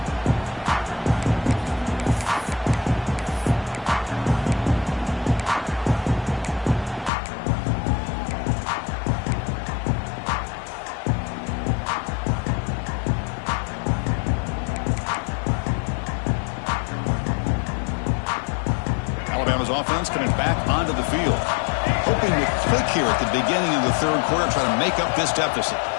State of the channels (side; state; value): right; drops out; at 7.1 s